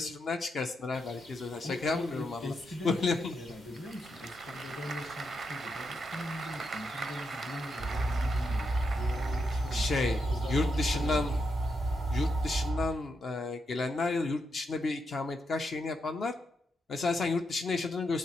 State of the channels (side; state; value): both; normal; correlation 0.83